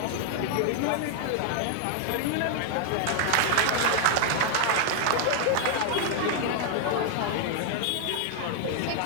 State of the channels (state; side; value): different; both; correlation 0.00